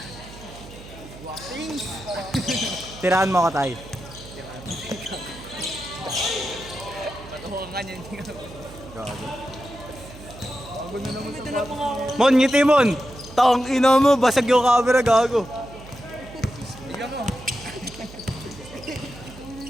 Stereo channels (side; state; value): right; noise; hum, 17 dB below the sound